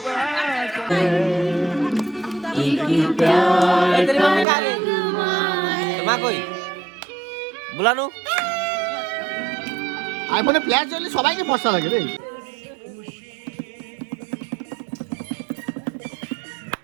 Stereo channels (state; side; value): drops out; left; at 4.5 s